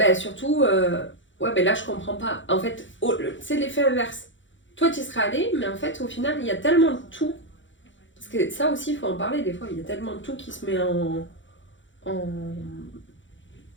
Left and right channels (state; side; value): late; right; 0.55 ms